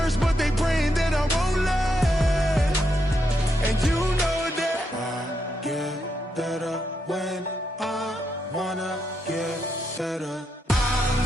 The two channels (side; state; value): both; normal; correlation 0.81